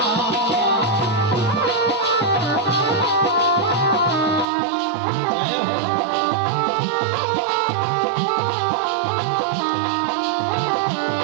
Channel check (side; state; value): left; drops out; at 4.5 s